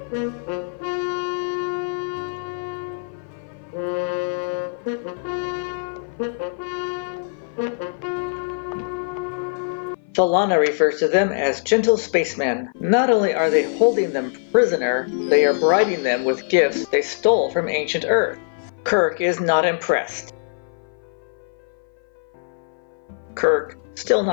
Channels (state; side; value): silent; right; 56 dB below the other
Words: Philana refers to them as gentle spacemen. Not only are they holding them prisoner, they are bribing them with gifts they stole from ancient Earth. Kirk is not impressed. Parman mansplains an apology. Kirk still